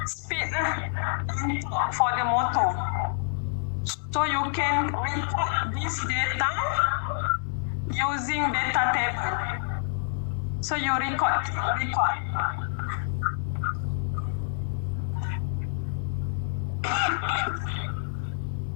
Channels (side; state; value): right; silent; digital silence